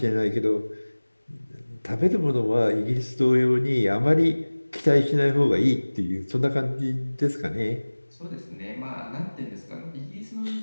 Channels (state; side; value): inverted; both; correlation -1.00